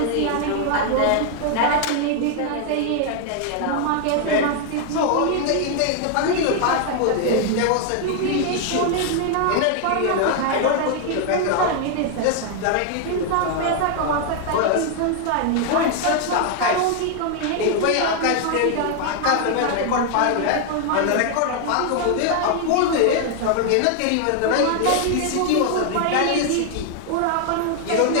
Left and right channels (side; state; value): both; different; correlation 0.00